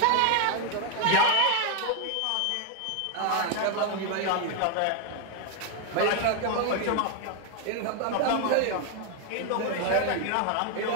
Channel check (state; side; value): different; both; correlation 0.01